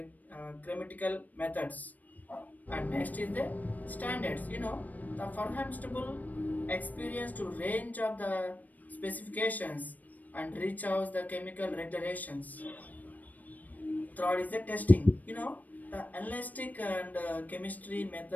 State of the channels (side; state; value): right; late; 0.079 ms